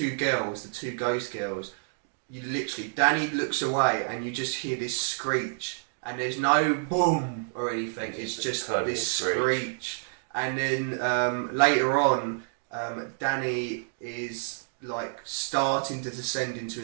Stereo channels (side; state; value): left; silent; digital silence